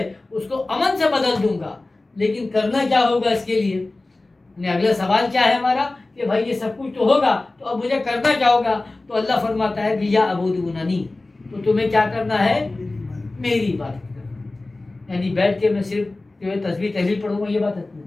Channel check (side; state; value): right; quieter; 3.0 dB